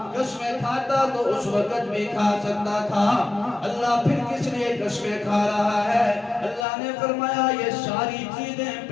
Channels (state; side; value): drops out; right; at 6.7 s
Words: قسمیں کھاتا تو اس وقت بھی کھا سکتا تھا۔ اللہ پھر کس لیے قسمیں کھا رہا ہے؟ اللہ نے فرمایا یہ ساری چیزیں